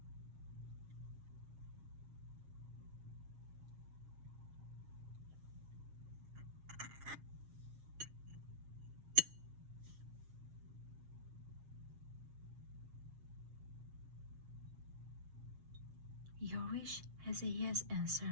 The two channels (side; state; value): left; late; 7.3 ms